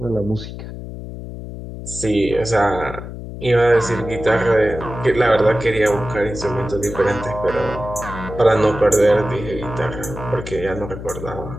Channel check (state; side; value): noise; left; hum, 10 dB below the sound